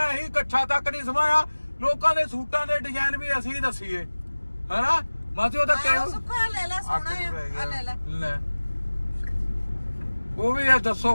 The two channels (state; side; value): inverted; both; correlation -1.00